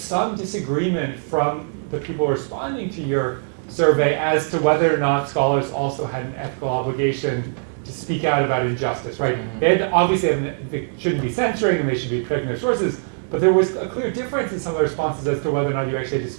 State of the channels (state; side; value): silent; left; digital silence